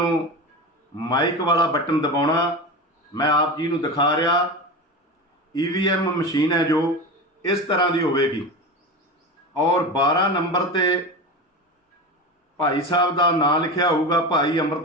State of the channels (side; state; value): both; normal; correlation 0.25